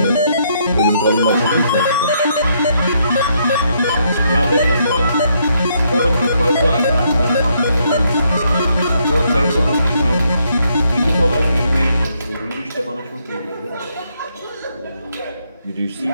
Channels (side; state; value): both; inverted; correlation -0.74